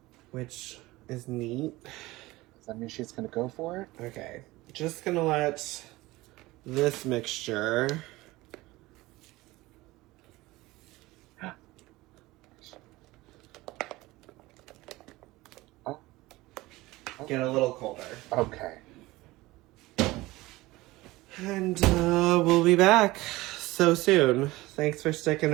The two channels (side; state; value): left; quieter; 19.6 dB